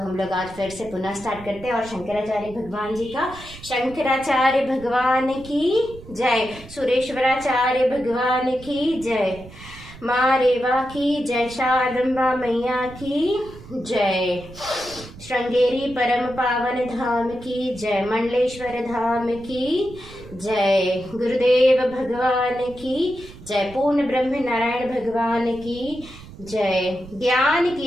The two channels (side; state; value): right; noise; rumble, 17 dB below the sound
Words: लोग आज फिर से पुनः स्टार्ट करते हैं, और शंकराचार्य भगवान जी का, शंकराचार्य भगवान की जय, सुरेश्वराचार्य भगवान की जय, माँ रेवा की जय, शारदम्बा मैया की जय, श्रृंगेरी परम पावन धाम की जय, मंडलेश्वर धाम की जय, गुरुदेव भगवान की जय, पूर्ण ब्रह्म नारायण भगवान की जय, ज्ञान